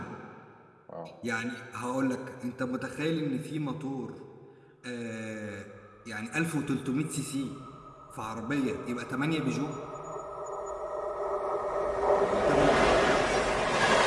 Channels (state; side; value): identical; both; correlation 1.00